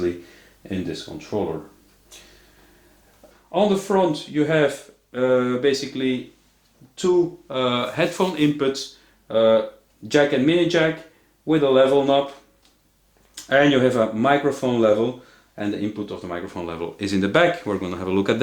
in this controller. On the front you have basically two headphone inputs, jack and mini jack with a level knob, and you have a microphone level, and the input of the microphone level is in the back. We're going to have a look at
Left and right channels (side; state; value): both; identical; correlation 1.00